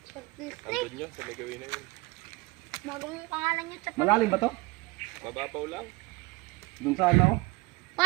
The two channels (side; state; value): left; quieter; 23.0 dB